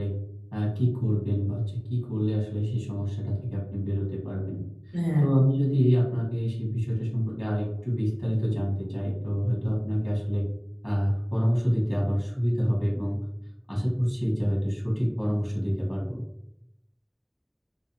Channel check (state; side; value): identical; both; correlation 1.00